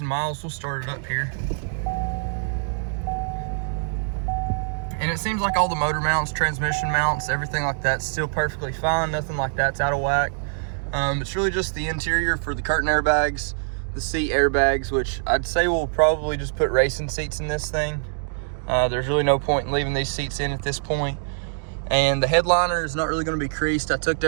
miles. We'll start it up here. And it seems like all the motor mounts, transmission mounts, everything like that's still perfectly fine. Nothing like that's out of whack. It's really just the interior for the curtain airbags, the seat airbags, which I'd say we'll probably just put racing seats in this thing. There's really no point in leaving these seats in at this point. And the headliner is not really going to be creased. I tucked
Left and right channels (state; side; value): silent; left; digital silence